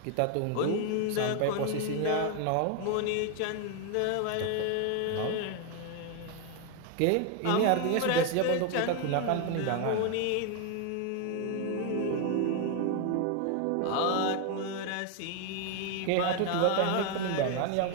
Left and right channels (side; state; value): both; different; correlation 0.01